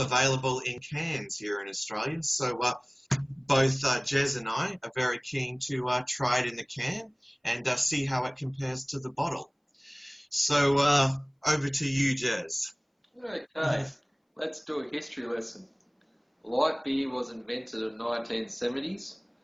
in cans here in Australia. So both Gez and I are very keen to try it in the can and see how it compares to the bottle. So over to you, Gez. Okay, let's do a history lesson. Light beer was invented in the 1970s.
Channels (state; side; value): identical; both; correlation 1.00